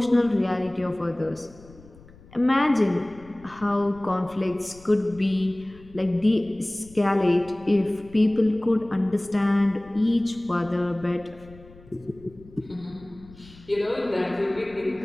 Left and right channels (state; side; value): noise; left; rumble, 23 dB below the sound